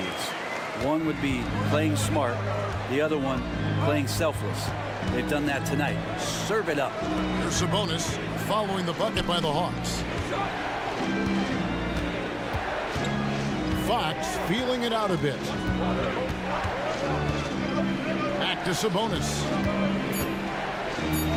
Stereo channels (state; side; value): identical; both; correlation 1.00